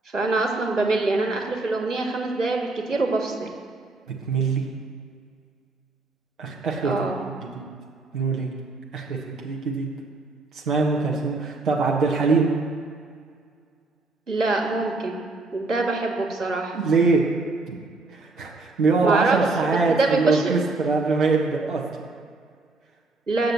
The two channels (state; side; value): quieter; left; 3.3 dB